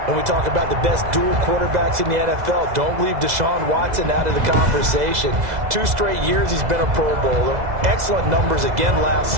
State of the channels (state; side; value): late; left; 2.0 ms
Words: When we talk about the best dual quarterbacks in the NFL, don't leave Deshaun Watson out of the conversation. 2 straight years he's been a Pro Bowler. Excellent numbers again last